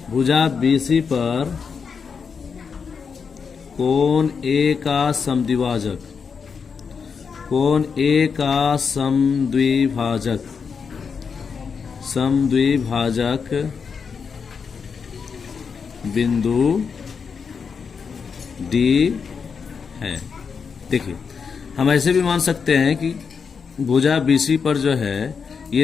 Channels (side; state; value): right; quieter; 5.9 dB